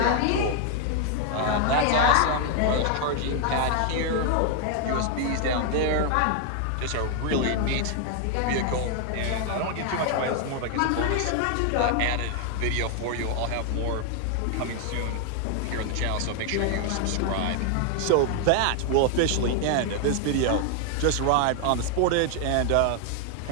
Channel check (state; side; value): different; both; correlation 0.00